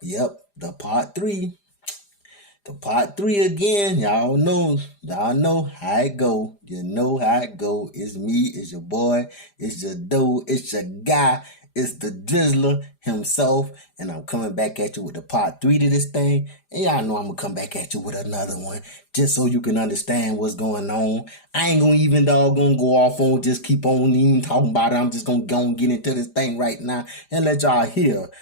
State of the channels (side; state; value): right; late; 5.0 ms